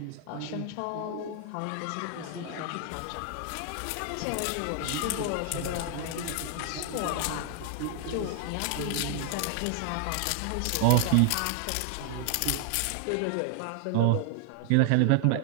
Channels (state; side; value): different; both; correlation 0.00